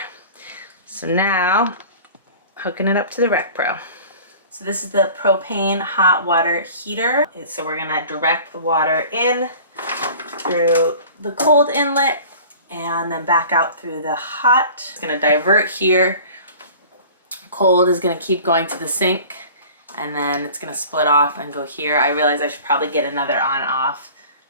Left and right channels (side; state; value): both; inverted; correlation -0.43